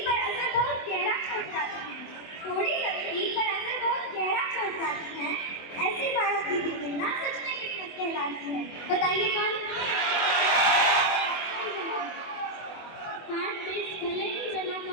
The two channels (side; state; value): right; late; 24 ms